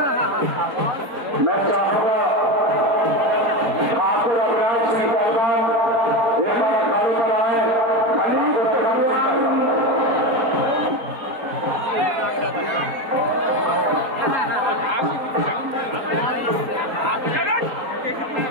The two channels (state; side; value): late; left; 4.3 ms